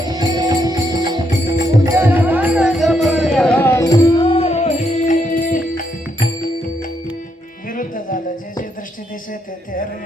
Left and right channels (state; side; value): normal; both; correlation 0.77